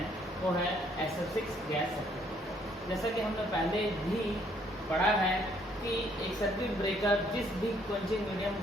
वो है SF6 गैस सर्किट ब्रेकर। जैसा कि हमने पहले भी पढ़ा है कि एक सर्किट ब्रेकर जिस भी क्वेंचिंग मीडियम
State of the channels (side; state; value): both; normal; correlation 0.66